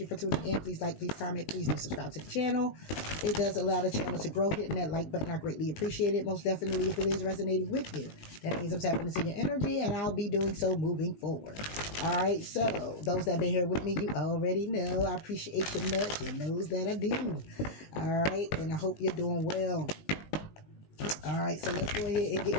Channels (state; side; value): late; right; 20 ms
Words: for tuning in. Please like, please comment, please do subscribe to the channel. It does allow the channel to grow. Hitting that like button, I greatly appreciate it. Most definitely if it is resonating with you. That means I'm tapping into your energy, and I'll be doing so moving forward. All right, so those that have been here with me, you already know I appreciate you much. You knows that I do. All right, and I hope you're doing well. All right, so let's go ahead and get